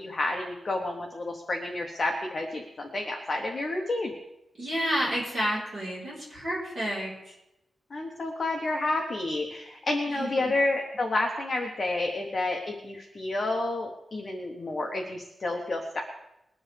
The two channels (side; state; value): both; normal; correlation 0.89